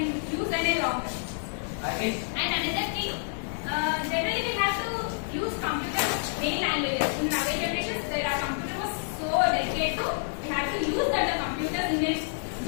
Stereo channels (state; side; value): silent; right; 59 dB below the other